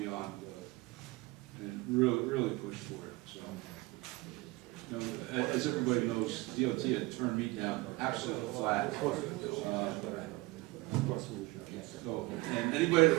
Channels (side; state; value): left; quieter; 21.9 dB